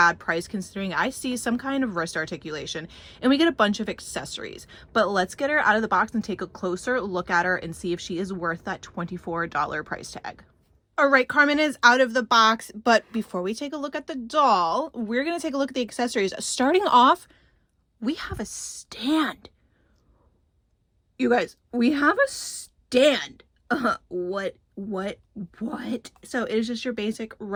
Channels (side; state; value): both; identical; correlation 1.00